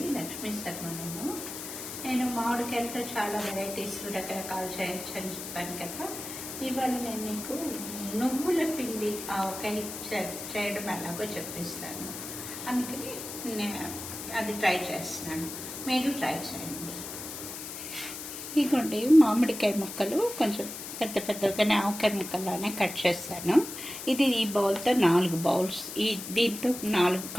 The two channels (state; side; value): noise; left; hiss, 9 dB below the sound